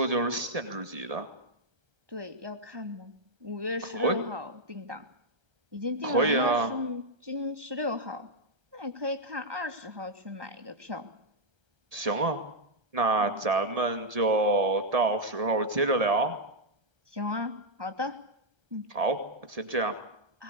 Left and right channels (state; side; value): late; left; 1.3 ms